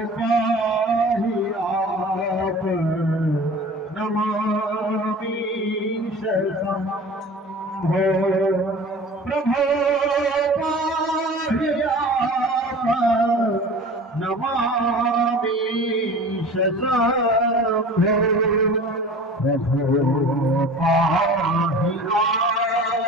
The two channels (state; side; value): normal; both; correlation 0.40